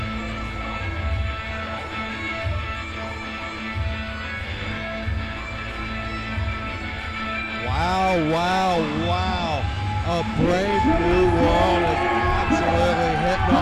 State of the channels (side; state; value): both; identical; correlation 1.00